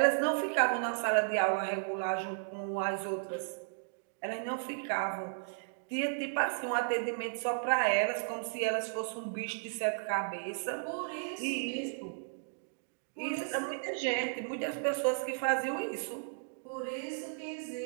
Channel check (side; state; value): left; silent; digital silence